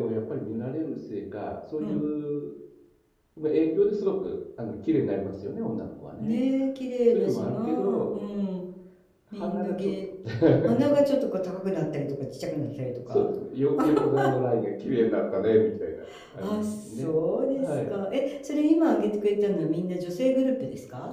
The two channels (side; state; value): both; identical; correlation 1.00